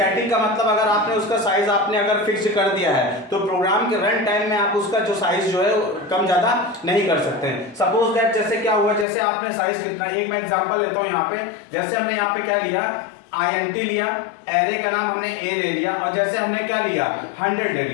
का मतलब अगर आपने उसका साइज आपने अगर फिक्स कर दिया है तो प्रोग्राम के रन टाइम में आप उसका जो साइज जो है कम ज्यादा नहीं कर सकते हैं। सपोज दैट जैसे क्या हुआ, जैसे आपने साइज कितना, एक मैं एग्जांपल लेता हूं यहाँ पे। जैसे हमने यहाँ पे क्या लिया, int लिया, एरे का नाम हमने a ले लिया और जैसे हमने क्या लिया, 100 ले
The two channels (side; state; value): right; drops out; at 9.1 s